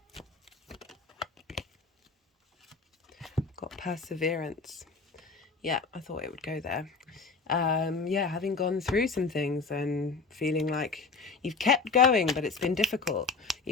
Got perseverance. Yeah, I thought it would go there. Yeah, having gone through some things and feeling like you've kept going, but it's been difficult.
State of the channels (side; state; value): right; quieter; 4.5 dB